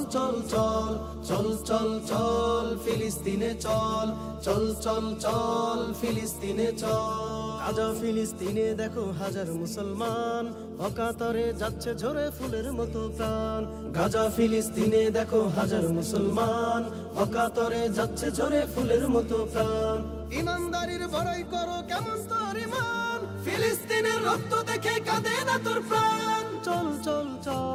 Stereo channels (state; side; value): identical; both; correlation 1.00